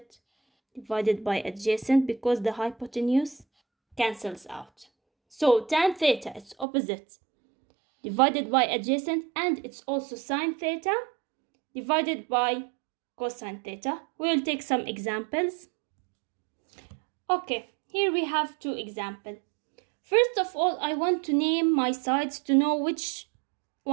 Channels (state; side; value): drops out; left; at 6.7 s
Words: divided by adjacent, because the hypotenuse cancels out. So tan theta, it's opposite divided by adjacent, and it's also sine theta divided by cosine theta. We will take some examples. Okay, here we have two examples. First of all, I want to name my sides to know which